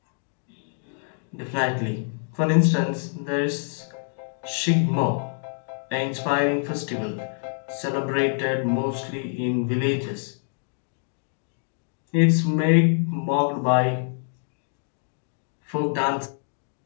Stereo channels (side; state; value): right; silent; digital silence